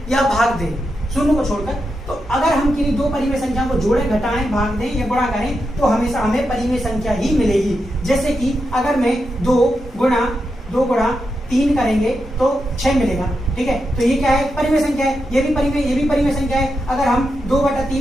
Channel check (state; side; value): normal; both; correlation 0.86